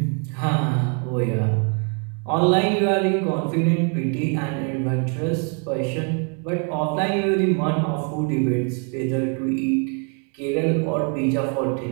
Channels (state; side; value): quieter; left; 38.5 dB